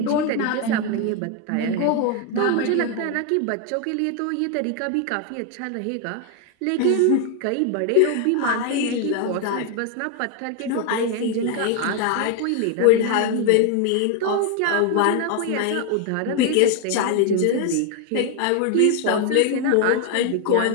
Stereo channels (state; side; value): different; both; correlation 0.01